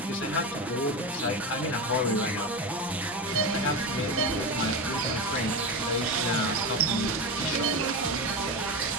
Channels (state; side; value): normal; both; correlation 0.20